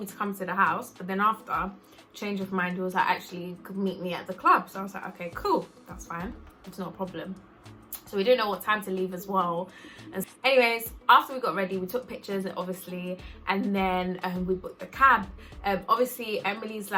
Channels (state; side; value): identical; both; correlation 1.00